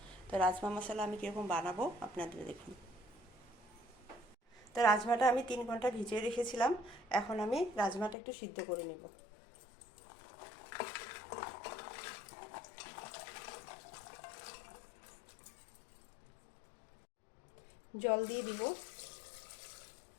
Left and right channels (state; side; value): drops out; right; at 8.2 s